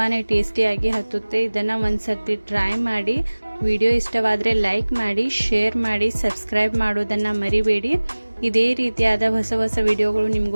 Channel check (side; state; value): both; inverted; correlation -1.00